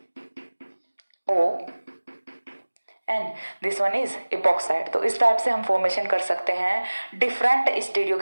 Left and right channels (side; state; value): both; inverted; correlation -1.00